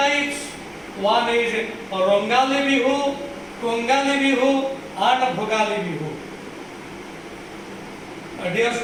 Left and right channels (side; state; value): both; identical; correlation 1.00